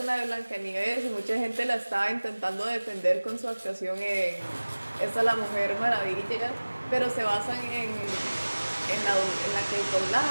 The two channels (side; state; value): both; inverted; correlation -1.00